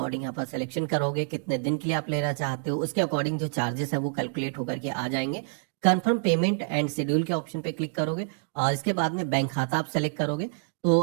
यहाँ पर सिलेक्शन करोगे, कितने दिन के लिए आप लेना चाहते हो, उसके अकॉर्डिंग जो चार्जेस है वो कैलकुलेट होकर के आ जाएंगे। कंफर्म पेमेंट एंड शेड्यूल के ऑप्शन पे क्लिक करोगे और इसके बाद में बैंक खाता आप सेलेक्ट करोगे। तो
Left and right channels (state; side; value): silent; left; digital silence